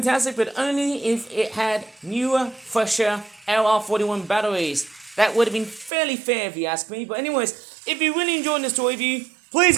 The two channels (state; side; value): drops out; left; at 5.9 s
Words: but only if it had newer, fresher LR41 batteries. That would have been fairly fair if you ask me. But anyways, if you really enjoyed this toy review, please